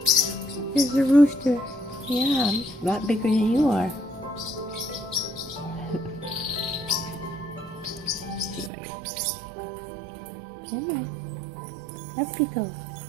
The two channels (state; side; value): drops out; left; at 8.7 s